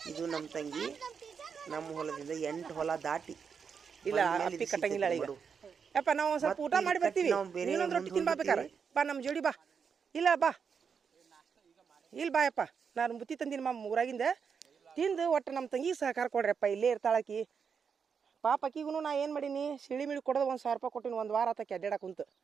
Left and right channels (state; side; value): quieter; left; 6.3 dB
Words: ಇದು ನಮ್ಮ ತಂಗಿ ನಮ್ಮ ಹೊಲದಿಂದ 8 ಹೊಲ ದಾಟಿ ಇಲ್ಲ ಅಪ್ಪಿ ಕಟ್ಟಂಗಿಲ್ಲ ಈಗ. ಯಪ್ಪ ನಾವು ಸ್ವಲ್ಪ ಊಟ ಮಾಡಿ ಬರ್ತೀವಿ, ಇನ್ನೊಂದು ರೊಟ್ಟಿ ತಿನ್ ಬಾಬೇಕಾರೆ ಬಾ ನಮ್ಮ ಜೋಡಿ ಬಾ. ಇಲ್ಲ ಬಾ, ಇಲ್ಲಿ ಬಾ ಯಪ್ಪ, ನಾನು ಬುತ್ತಿ ತಂದಿನಿ ಊರಾಗಿಂದ ತಿಂದು ಒಟ್ಟು ನಮ್ಮ ತಂಗಿಗೆ ಸಹಕಾರ ಕೊಡ್ರಪ್ಪ. ಇಲ್ಲೇ ಇರ್ತಾಳಕಿ ಪಾಪ. ಅಕ್ಕಿಗೂ ನಾ ಏನು ಮಾಡೀನಿ, ಸಿಳಿ ಮಿಳಿ ಕೊಡೋದು 1,000 ರೂಪಾಯಿ ಕೊಟ್ಟಿನಿ. 1 ವಾರ ಆತಕ್ಕೆ ಅಡ್ಡಾಡಕ್ಕೆ ಕುಂತು